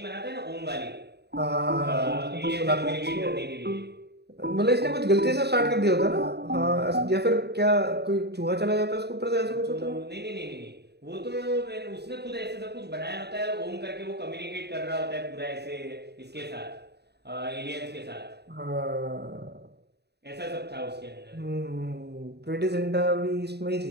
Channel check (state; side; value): late; left; 0.48 ms